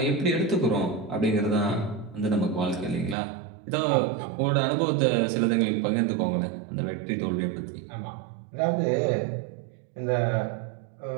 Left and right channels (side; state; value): left; drops out; at 3.2 s